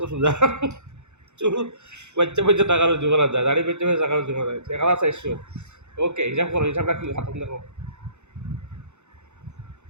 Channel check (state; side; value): late; left; 0.83 ms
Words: সোজা চুল বাচ্চা বাচ্চা টাকা রুজি করা যায় দাড়ি বাচ্চা বাচ্চা টাকা রুজি করা যায় 1400 ওকে হিসাব করো হিসাবটা কি হাতম দেখো